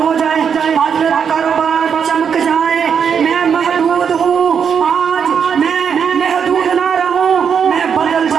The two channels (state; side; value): quieter; left; 7.1 dB